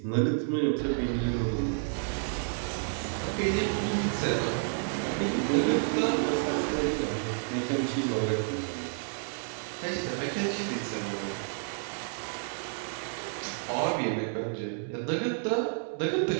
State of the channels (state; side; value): silent; left; 58 dB below the other